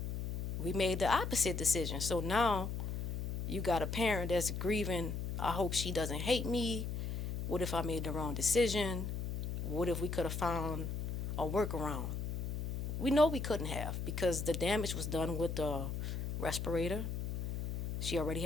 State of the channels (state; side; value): noise; left; hum, 3 dB below the sound